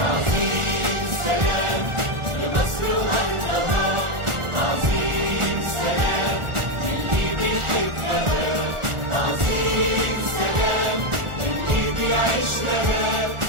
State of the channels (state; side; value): late; left; 1.4 ms